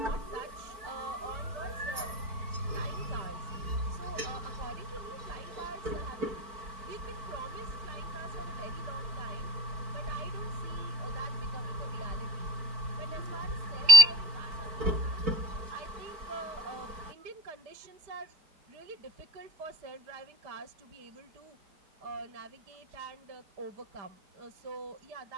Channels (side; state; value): left; late; 4.5 ms